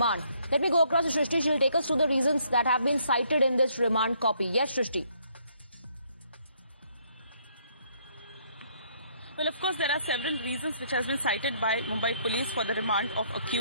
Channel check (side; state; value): both; inverted; correlation -0.68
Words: Let me go across to Shrishti. She'll take us through the reasons that have been cited in this remand copy. Yes, Shrishti. Well, of course, there are several reasons which has been cited by Mumbai police for the remand of